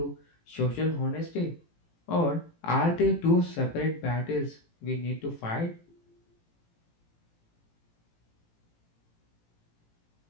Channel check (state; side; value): late; right; 18 ms